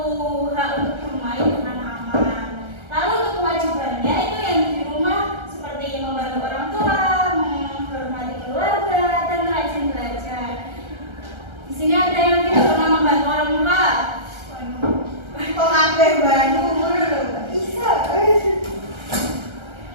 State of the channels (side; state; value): left; late; 1.3 ms